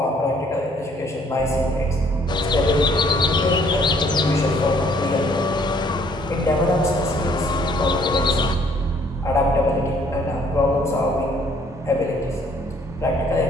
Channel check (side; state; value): both; normal; correlation 0.62